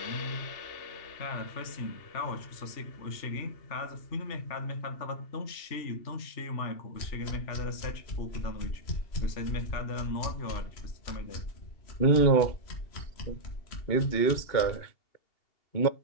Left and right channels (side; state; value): right; late; 2.8 ms